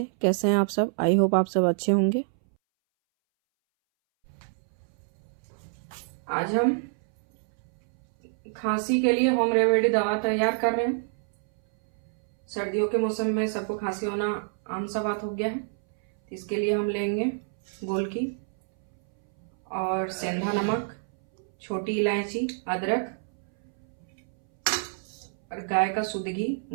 कैसे हैं आप सब? आई होप आप सब अच्छे होंगे। आज हम खांसी के लिए होम रेमेडी दवा तैयार कर रहे हैं। सर्दियों के मौसम में सबको खांसी होना आम सा बात हो गया है। इसके लिए हम लेंगे गोलकी और सेंधा नमक, छोटी इलायची, अदरक और गाय का शुद्ध घी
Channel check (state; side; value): silent; left; 60 dB below the other